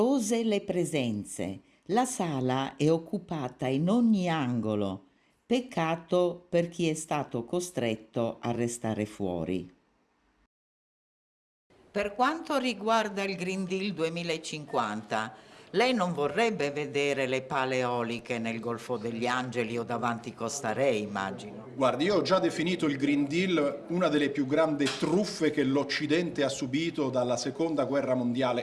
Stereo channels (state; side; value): identical; both; correlation 1.00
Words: le presenze. La sala è occupata in ogni angolo. Peccato per chi è stato costretto a restare fuori. Per quanto riguarda il Green Deal 2050, lei non vorrebbe vedere le pale eoliche nel Golfo degli Angeli o davanti Costa Re, immagino. Guardi, io ho già definito il Green Deal una delle più grandi truffe che l'Occidente ha subito dalla Seconda Guerra